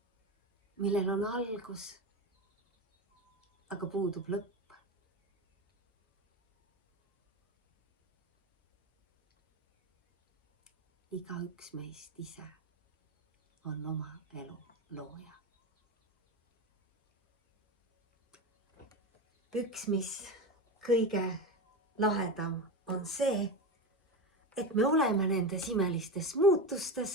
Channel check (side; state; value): both; normal; correlation 0.21